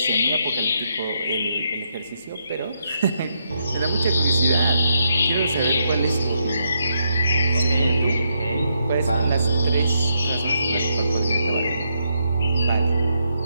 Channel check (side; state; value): both; inverted; correlation -0.78